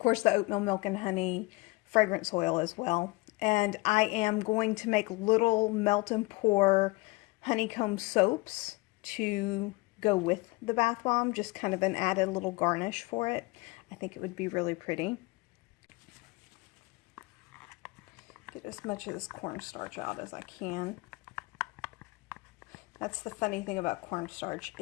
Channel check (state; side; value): quieter; right; 24.0 dB